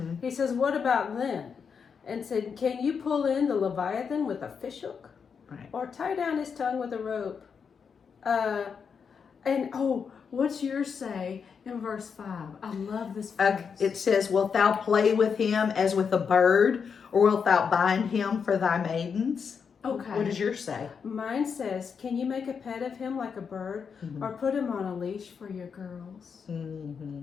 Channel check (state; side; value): quieter; right; 6.3 dB